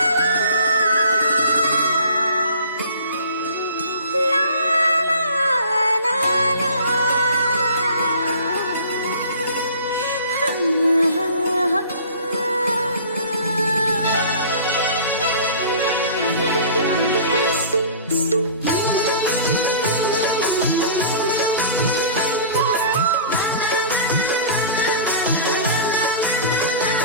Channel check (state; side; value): inverted; both; correlation -0.44